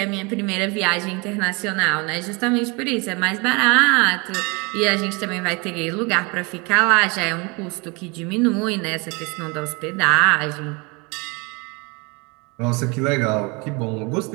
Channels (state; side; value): quieter; left; 28.7 dB